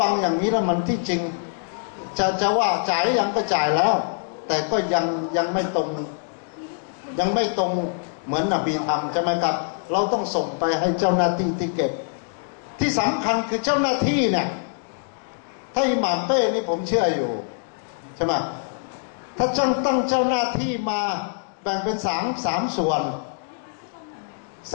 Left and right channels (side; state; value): right; silent; digital silence